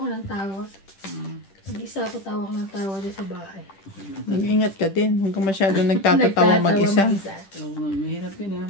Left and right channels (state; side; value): late; right; 10 ms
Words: ng tawa. Mag-isa ako tawa ko ng tawa doon sa bahay. Mag-ingat ka din. Huwag ka masyado nagtatatawa mag-isa. Oo, mahirap yun ha.